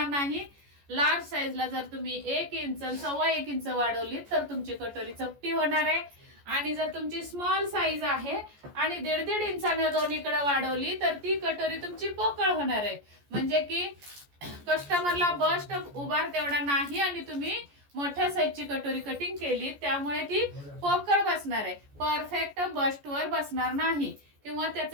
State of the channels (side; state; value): left; late; 14 ms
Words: नाही. लार्ज साईजला जर तुम्ही 1 इंच 1.25 इंच वाढवली तर तुमची कटोरी चपटी होणार आहे. आणि जर तुमची स्मॉल साईज आहे आणि 1.5 इंचाने दोन्हीकडे वाढवली तर ती कटोरी तुमची पोकळ होणार आहे. म्हणजे की कस्टमरला बस्ट उभार तेवढा नाही आणि तुम्ही मोठ्या साईजची कटोरी कटिंग केली त्यामुळे ती पोकळ बसणार आहे, परफेक्ट बस्ट वर बसणार नाही किंवा